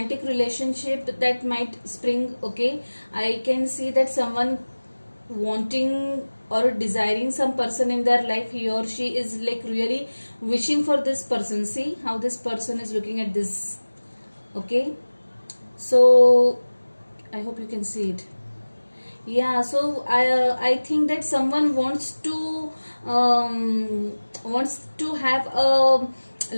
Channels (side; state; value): both; inverted; correlation -1.00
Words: relationship that might spring. Okay, I can see that someone wanting or desiring some person in their life. He or she is like really wishing for this person. See how this person is looking at this. Okay, so I hope you can see it. Yeah, so I think that someone wants to have a